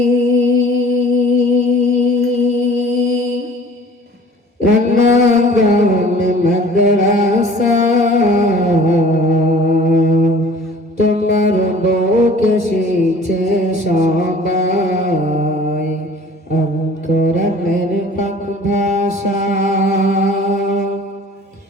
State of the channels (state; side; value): normal; both; correlation 0.48